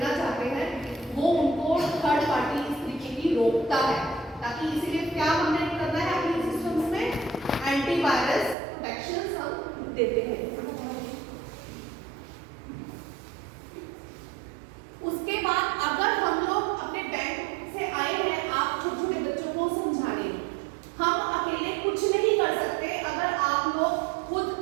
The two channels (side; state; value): left; drops out; at 8.6 s